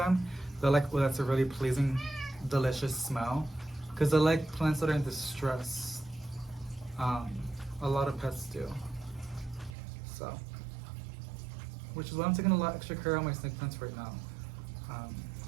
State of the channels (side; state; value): left; drops out; at 9.8 s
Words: They're like, oh, that's a really pleasing, delicious smell. Because they're like plants that are in distress. A lot of pets do. So, which is why I'm taking a lot extra care on my snake plants right now.